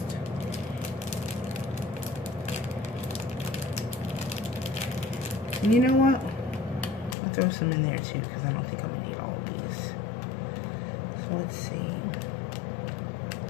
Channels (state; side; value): drops out; right; at 7.2 s